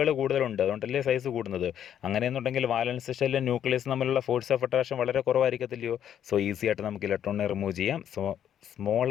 കൂടുതലുണ്ട്, അതുകൊണ്ടല്ലേ സൈസ് കൂടുന്നത്. അങ്ങനെയെന്നുണ്ടെങ്കിൽ വാലൻസ് ഷെല്ലും ന്യൂക്ലിയസ് തമ്മിലുള്ള ഫോഴ്സ് ഓഫ് അട്രാക്ഷൻ വളരെ കുറവായിരിക്കത്തില്ലയോ. സോ ഈസി ആയിട്ട് നമുക്ക് ഇലക്ട്രോണിനെ റിമൂവ് ചെയ്യാം. So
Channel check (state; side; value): quieter; right; 9.8 dB